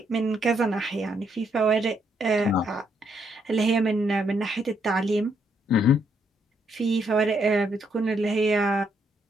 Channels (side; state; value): both; normal; correlation 0.74